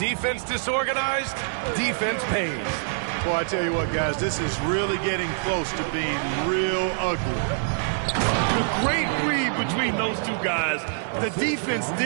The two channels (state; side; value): silent; left; 56 dB below the other